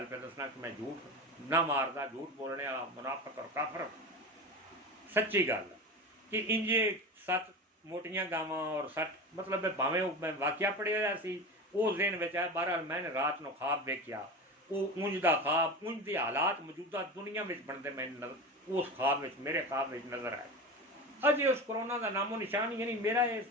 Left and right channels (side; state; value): both; normal; correlation 0.27